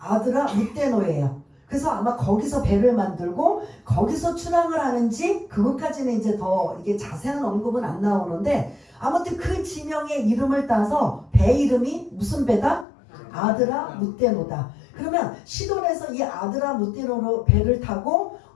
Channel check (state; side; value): drops out; right; at 12.9 s